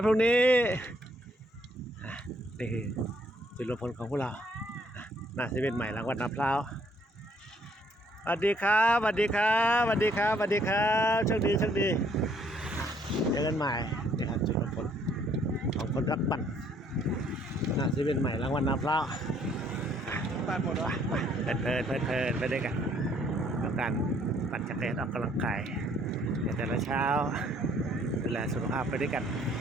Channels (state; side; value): normal; both; correlation 0.65